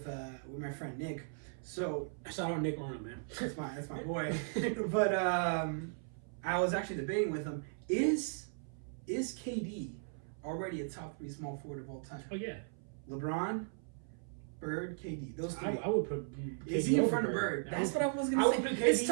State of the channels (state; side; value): silent; left; 53 dB below the other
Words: my friend Nick. So shout out Nick Arnold, man. That's my boy. But I was actually debating with him. Is KD already a top 3 small forward of all time? Oh yeah. LeBron, Bird, KD. Those 3. I would put KD is he in front over of Bird? That's what I was going to say. It's